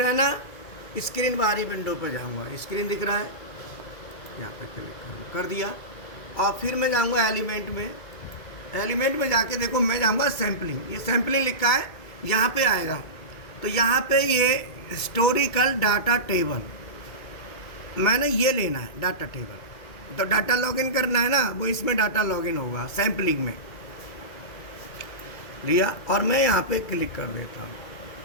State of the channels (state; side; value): late; right; 2.3 ms